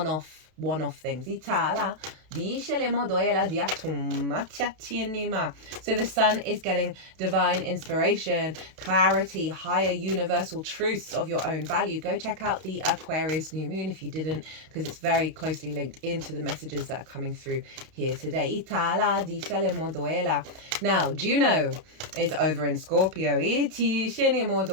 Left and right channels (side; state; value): left; late; 32 ms